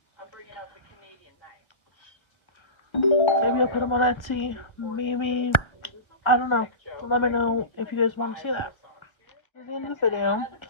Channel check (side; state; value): right; late; 1.4 ms